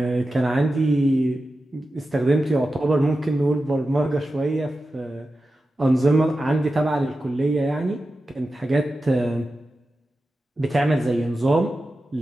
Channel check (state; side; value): normal; both; correlation 0.92